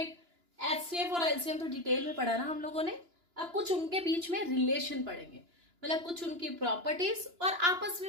एचसीएफ और एलसीएम तो डिटेल में पढ़ा ना हम लोगों ने। अब कुछ उनके बीच में रिलेशन पढ़ेंगे, मतलब कुछ उनकी प्रॉपर्टीज और आपस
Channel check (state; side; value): late; left; 2.9 ms